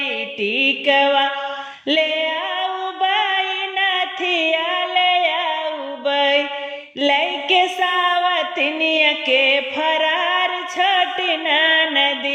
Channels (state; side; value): identical; both; correlation 1.00